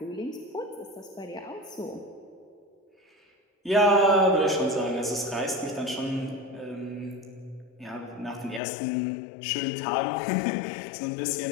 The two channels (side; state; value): right; drops out; at 8.6 s